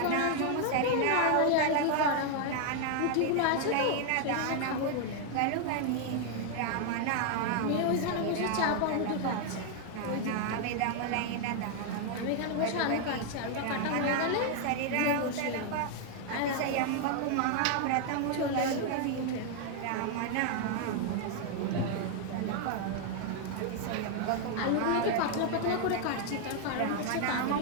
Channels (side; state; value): both; different; correlation 0.00